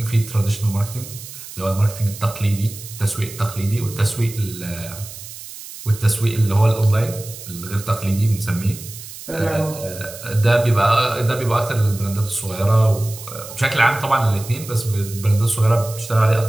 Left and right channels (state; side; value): noise; right; hiss, 14 dB below the sound